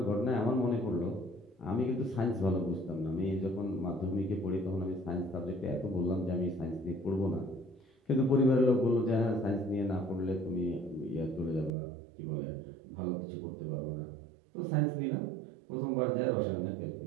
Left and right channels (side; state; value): left; drops out; at 11.7 s